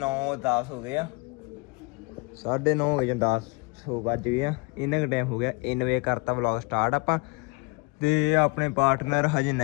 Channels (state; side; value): quieter; right; 28.3 dB